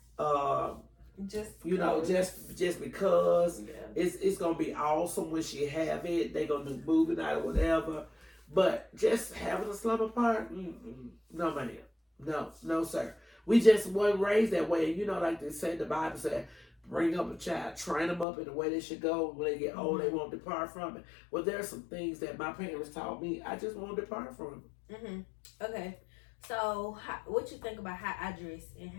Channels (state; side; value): drops out; right; at 18.2 s